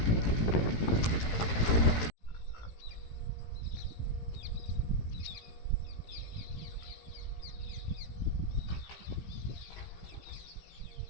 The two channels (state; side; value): late; right; 17 ms